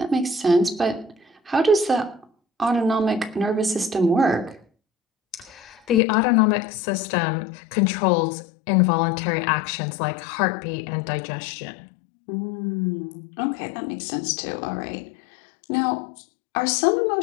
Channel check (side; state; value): right; drops out; at 6.0 s